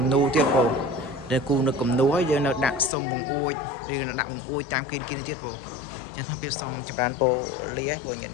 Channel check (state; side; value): drops out; right; at 2.9 s